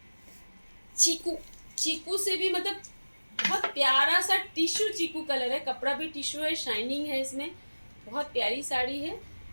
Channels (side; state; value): both; inverted; correlation -1.00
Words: चीकू, चीकू से भी मतलब बहुत प्यारा सा टिश्यू चीकू कलर है, कपड़ा भी टिश्यू है, शाइनिंग है इसमें, बहुत प्यारी साड़ी है।